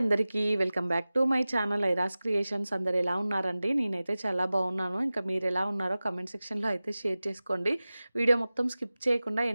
Welcome back to my channel Iras creations. అందరు ఎలా ఉన్నారండి? నేనైతే చాలా బాగున్నాను. ఇంకా మీరు ఎలా ఉన్నారో కమెంట్ సెక్షన్‌లో అయితే షేర్ చేసుకోండి. వీడియో మొత్తం స్కిప్ చేయకుండా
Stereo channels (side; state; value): both; inverted; correlation -0.97